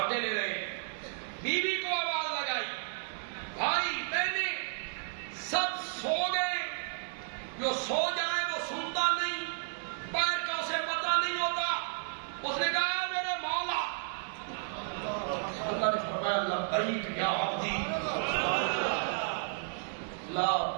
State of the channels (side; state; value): left; silent; 56 dB below the other